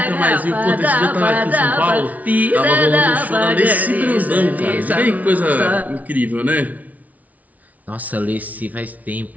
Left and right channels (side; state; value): left; late; 0.072 ms